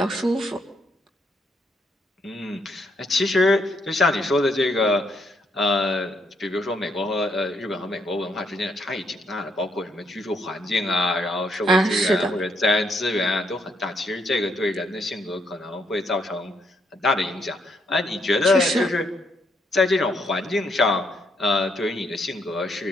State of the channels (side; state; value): both; normal; correlation 0.74